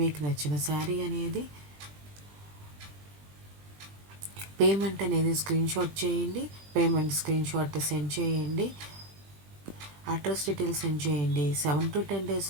నచ్చిన శారీ అనేది పేమెంట్ అనేది స్క్రీన్ షాట్ చేయండి. పేమెంట్ స్క్రీన్ షాట్ సెండ్ చేయండి. అడ్రస్ డీటెయిల్స్ సెండ్ చేయండి. 7 to 10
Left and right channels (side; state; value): left; late; 20 ms